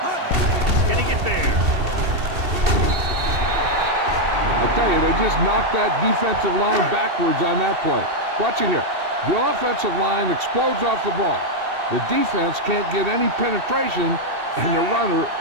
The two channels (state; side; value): late; left; 2.7 ms